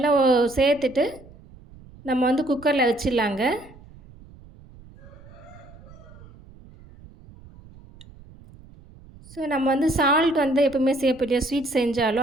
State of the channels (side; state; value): right; noise; rumble, 22 dB below the sound